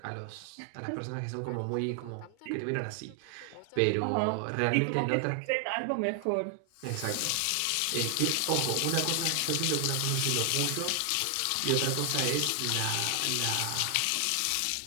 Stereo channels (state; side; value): different; both; correlation 0.00